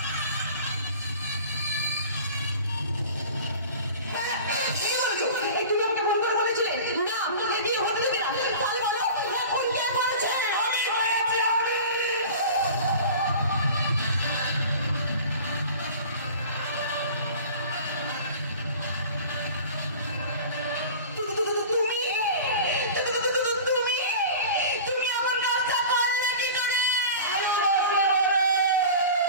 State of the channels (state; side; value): inverted; both; correlation -0.38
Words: একটু লোককে ফোন করে বলেছিলে না বিয়ে হতে দেবে না, তাহলে বলো এখন কে করেছে? তুমি